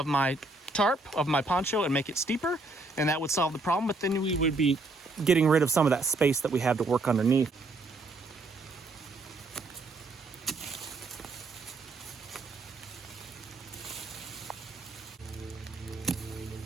tarp of my poncho and make it steeper, and that would solve the problem, but then we would be getting rid of some of that space that we have to work underneath.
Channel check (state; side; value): quieter; left; 3.1 dB